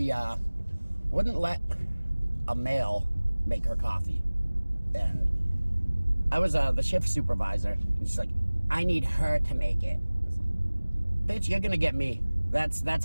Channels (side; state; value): both; inverted; correlation -1.00